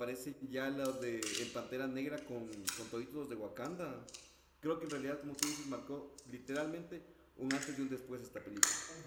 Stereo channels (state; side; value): identical; both; correlation 1.00